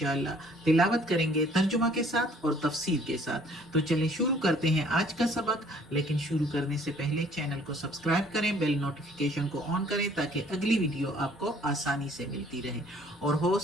تلاوت کریں گے ترجمہ کے ساتھ اور تفسیر کے ساتھ۔ تو چلیں شروع کرتے ہیں آج کا سبق، لیکن شروع کرنے سے پہلے چینل کو سبسکرائب کریں، بیل نوٹیفیکیشن کو آن کریں تاکہ اگلی ویڈیو آپ کو آسانی سے ملتی رہے، اور ہو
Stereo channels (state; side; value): normal; both; correlation 0.58